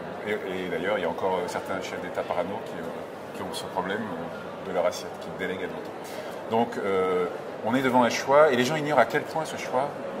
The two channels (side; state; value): both; identical; correlation 1.00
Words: Et d'ailleurs, il y a encore certains chefs d'État parano qui ont ce problème de leur assiette, qui délèguent à d'autres. Donc, on est devant un choix, et les gens ignorent à quel point ce choix